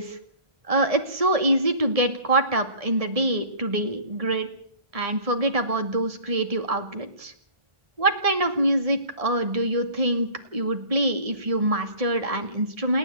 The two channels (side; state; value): left; late; 1.7 ms